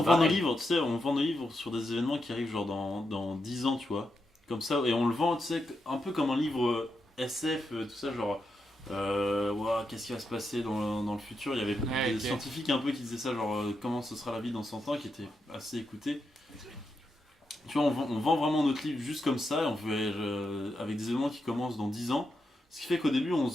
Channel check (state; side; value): normal; both; correlation 0.85